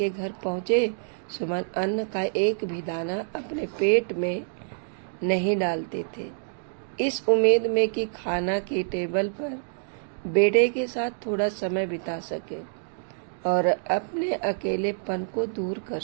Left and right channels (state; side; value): silent; left; digital silence